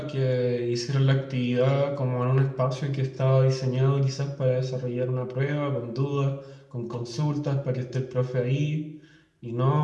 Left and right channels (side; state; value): both; identical; correlation 1.00